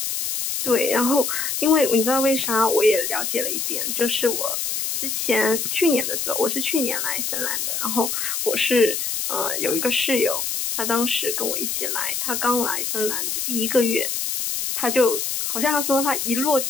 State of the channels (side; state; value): left; noise; hiss, 2 dB below the sound